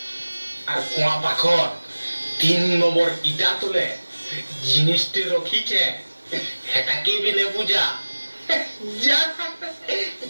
আর কুয়া পাখর 3 নম্বর ইটা তুলে জিনিসটি রখিছে হেটাকে বি নে বুঝা যা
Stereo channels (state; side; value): inverted; both; correlation -1.00